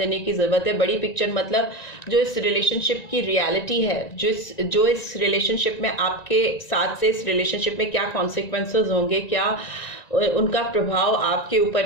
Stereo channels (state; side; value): late; right; 1.9 ms